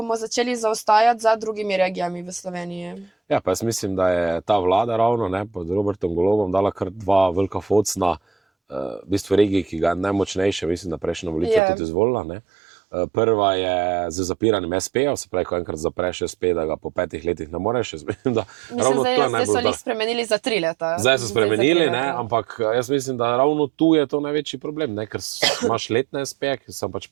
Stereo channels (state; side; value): drops out; left; at 11.6 s